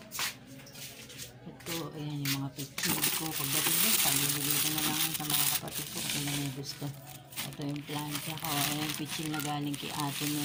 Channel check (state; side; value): identical; both; correlation 1.00